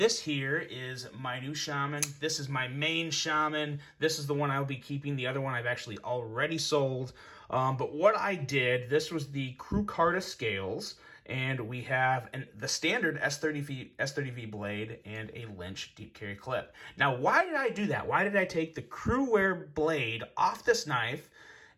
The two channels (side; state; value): both; identical; correlation 1.00